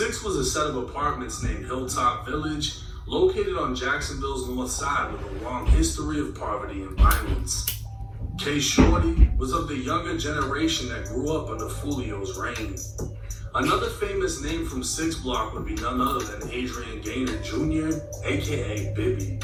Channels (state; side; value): identical; both; correlation 1.00